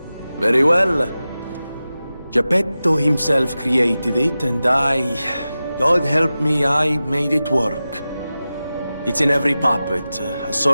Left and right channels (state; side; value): inverted; both; correlation -0.94